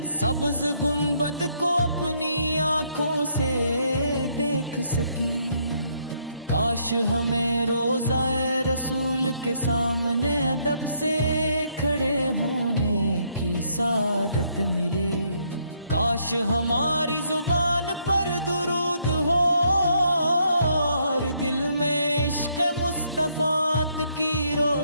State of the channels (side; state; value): both; inverted; correlation -0.71